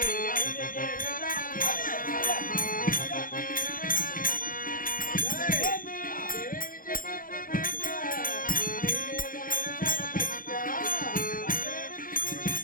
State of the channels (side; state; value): right; late; 0.40 ms